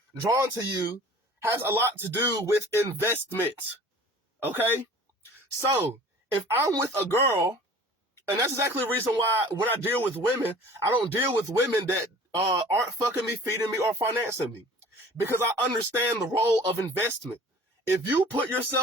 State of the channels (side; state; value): both; normal; correlation 0.46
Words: drawn to you has a lot to do with investment. Okay? So, if I'm with a girl, and that's exactly the reason why when I deal with women, I don't deal with women that aren't fucking me, feeding me, or financing me. Because I understand the role of investment. If you put